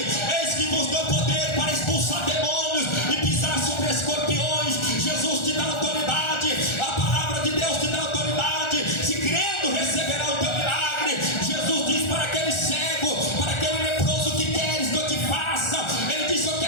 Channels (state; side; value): late; right; 1.4 ms